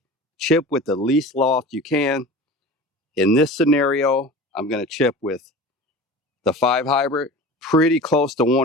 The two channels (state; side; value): normal; both; correlation 0.36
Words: chip with the least loft you can. In this scenario, I'm going to chip with the 5 hybrid. Pretty close to